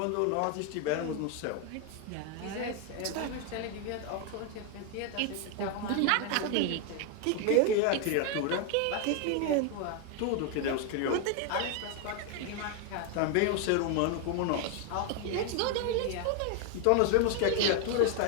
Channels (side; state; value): both; different; correlation 0.01